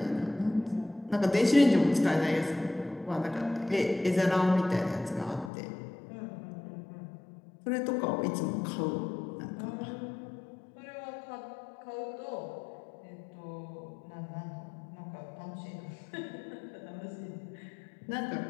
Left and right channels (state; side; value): drops out; right; at 5.5 s